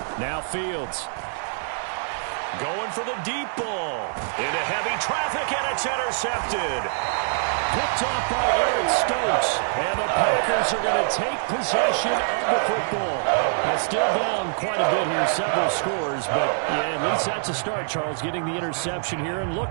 Now Fields. Going for the deep ball. Into heavy traffic, and it's intercepted. Picked off by Eric Stokes. And the Packers are going to take possession of the football. Now still down quite a bit here, several scores, but yeah, at least that's a start, Charles, getting the interception here. And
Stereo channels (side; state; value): left; silent; digital silence